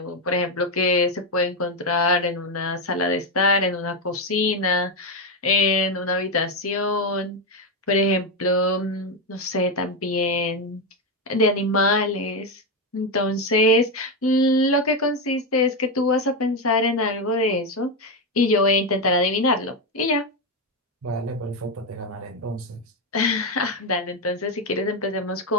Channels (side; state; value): both; normal; correlation 0.08